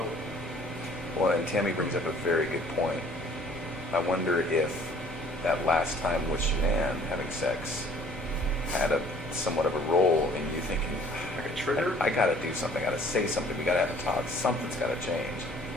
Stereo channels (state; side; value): normal; both; correlation 0.54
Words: Well, and Tammy brings up a very good point. I wonder if that last time with Shanann having sex had somewhat of a role in you thinking, like a trigger. I gotta do something, I gotta say something, we gotta have a talk, something's gotta change.